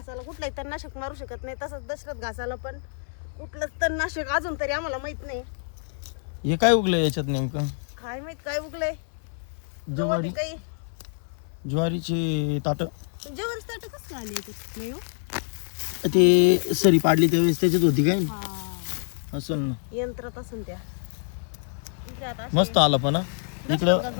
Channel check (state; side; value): silent; right; 60 dB below the other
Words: कुठलाही तणनाशक मारू शकत नाही, तसंच दशरथ घासाला पण कुठलंच तणनाशक अजून तरी आम्हाला माहित नाही. हे काय उगलंय याच्यात नेमकं? काय माहित काय उगलंय. ज्वारी, काही ज्वारीची ताट. जेवण ताट कसं आले याच्यात? नाही हो, ते सरी पाडली त्यावेळेस त्याच्यात होती काय असेल ना, यंत्रात असून त्या. इकडे आता मस्त आला पण इकडं घास